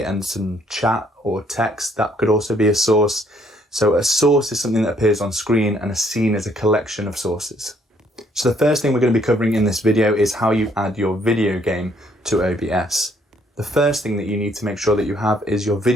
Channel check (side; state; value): both; normal; correlation 0.66